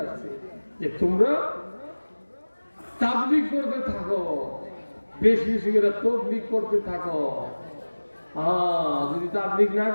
আসছে যে তোমরা তাবলীগ করতে থাকো, বেশি বেশি করে তাবলীগ করতে থাকো। যদি তাবলীগ না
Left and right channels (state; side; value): inverted; both; correlation -1.00